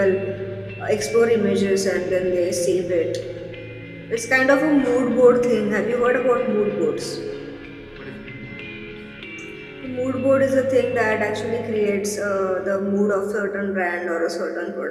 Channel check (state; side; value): identical; both; correlation 1.00